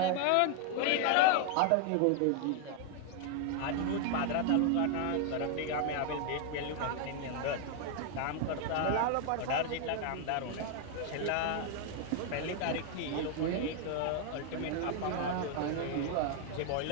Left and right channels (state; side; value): different; both; correlation 0.00